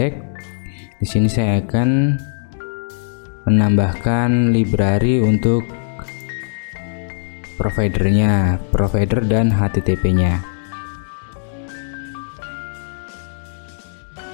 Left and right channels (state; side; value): silent; right; digital silence